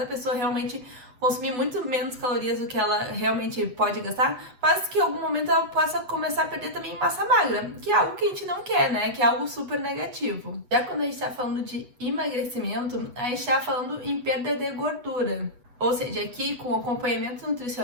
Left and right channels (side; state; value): left; late; 8.1 ms